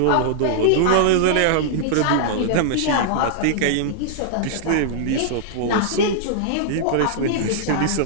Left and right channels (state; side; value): different; both; correlation -0.01